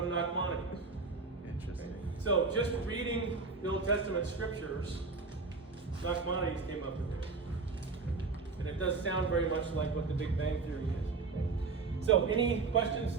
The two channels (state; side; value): quieter; left; 4.2 dB